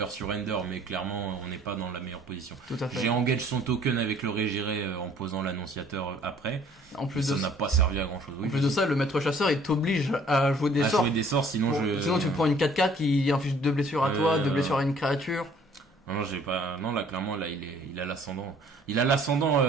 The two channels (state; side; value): normal; both; correlation 0.57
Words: surrender, mais clairement on n'est pas dans la meilleure position. Tout à fait. J'ai engagé son token avec le Régiré en posant l'annonciateur après. En plus Ça de n'a pas servi à grand chose. En plus de ça, le maître chasseur il t'oblige à jouer des à sorts. jouer des sorts, sinon Sinon tu prends une 4-4 qui inflige 2 blessures à toi, 2 blessures à une créature. Non, j'ai pas. Non, là, clairement, là, il a l'ascendant. Il a l'ascendant,